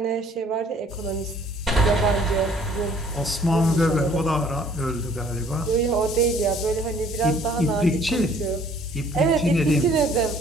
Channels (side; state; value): both; normal; correlation 0.57